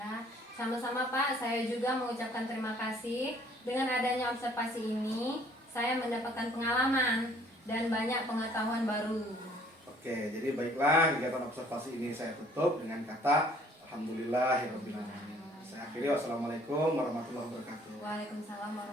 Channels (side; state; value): both; normal; correlation 0.58